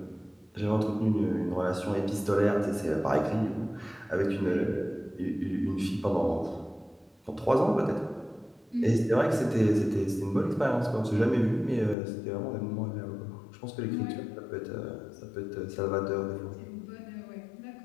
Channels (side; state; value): right; drops out; at 12.0 s